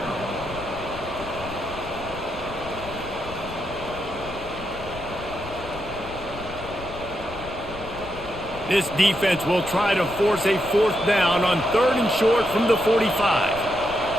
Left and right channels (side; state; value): left; noise; rumble, 13 dB below the sound